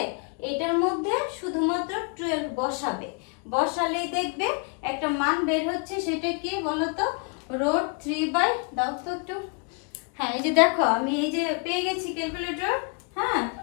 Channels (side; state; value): right; quieter; 37.1 dB